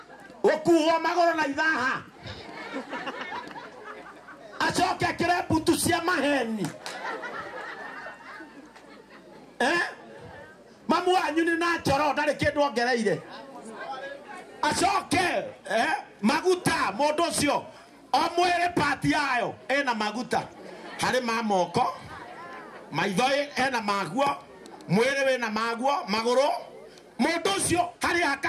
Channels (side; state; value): both; identical; correlation 1.00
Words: ukuo magoro na ithaha acoke akire mbutu cia maheni mamu wanyu ni na njoro ndari kindu ongereire acoke maguta mundu ucio o mwire pati yayo ena maguta hari ma moko maitho ena maguo mwire wena maguo maguru mundu ucio hari